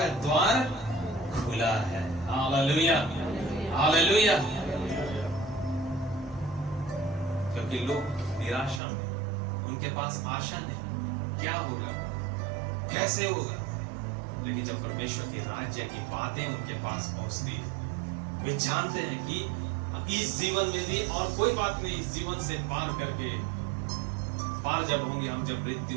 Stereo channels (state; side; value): drops out; left; at 8.8 s